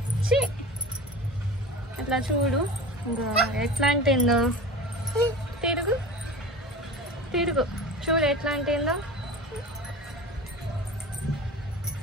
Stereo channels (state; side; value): normal; both; correlation 0.33